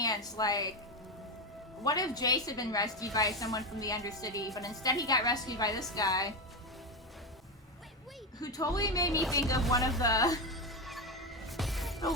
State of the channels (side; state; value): both; normal; correlation 0.13